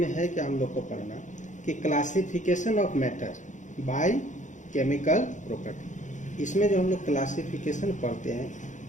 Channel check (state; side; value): late; right; 0.36 ms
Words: है कि हम लोग को पढ़ना कि classification of matter by chemical property. इसमें जो हम लोग क्लासिफिकेशन पढ़ते हैं